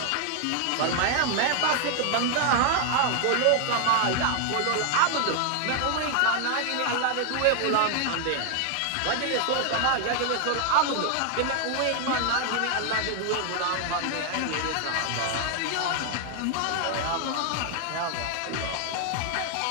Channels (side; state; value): both; different; correlation 0.00